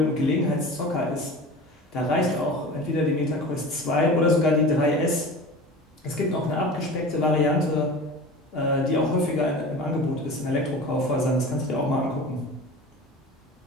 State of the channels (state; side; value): normal; both; correlation 0.36